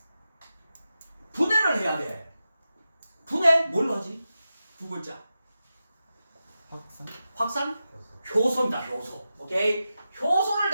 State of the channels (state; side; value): inverted; both; correlation -0.91